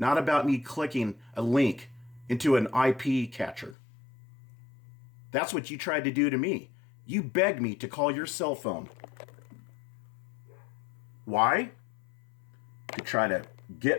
about me clicking a link into an IP catcher. That's what you tried to do to me. You begged me to call your cell phone. Why? To try to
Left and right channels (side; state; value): right; drops out; at 3.8 s